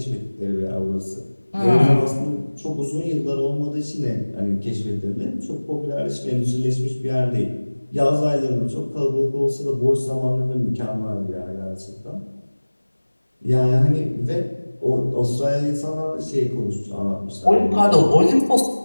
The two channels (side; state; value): both; inverted; correlation -1.00